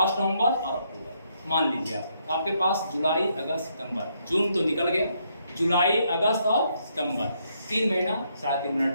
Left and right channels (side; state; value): both; inverted; correlation -0.75